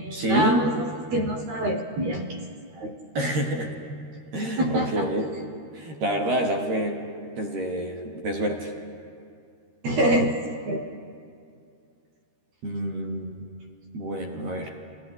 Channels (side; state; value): left; late; 13 ms